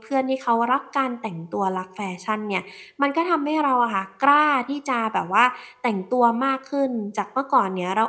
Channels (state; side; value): identical; both; correlation 1.00